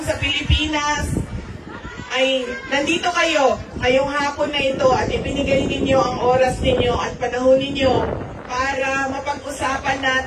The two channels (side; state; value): both; identical; correlation 1.00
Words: sa Pilipinas, ay nandito kayo ngayong hapon na ito at ibinigay ninyo ang oras ninyo at panahon ninyo para mapag-usapan